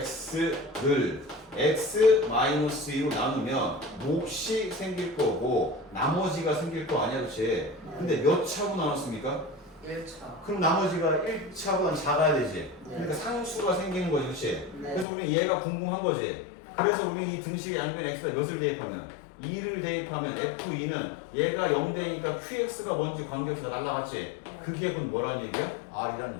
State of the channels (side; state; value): right; drops out; at 15.1 s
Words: x-2로 나누면 몫이 생길 거고 나머지가 생길 거 아니야, 그치? 근데 몇 차로 나눴습니까? 1차. 그럼 나머지가 1차보다 작아야 되지. 그러니까 상수가 생기는 거지, 그치? 네. 그래서 우리 얘가 궁금한 거지. 그래서 우리 이 등식의 양변 x가 몇을 대입하면 2를 대입하면 f2는 얘가 0대니까 qx가 뭔지 관계없이 날라갔지. 그게 그럼 뭐라는 얘기야? r이라는